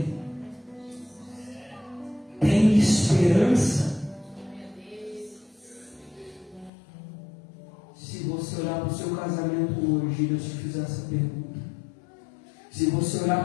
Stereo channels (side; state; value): right; drops out; at 6.7 s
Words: Tem esperança? Se você olhar para o seu casamento hoje e Deus te fizer essa pergunta, se você olhar